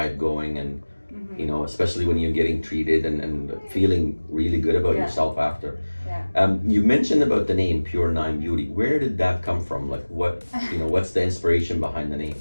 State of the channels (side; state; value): both; inverted; correlation -1.00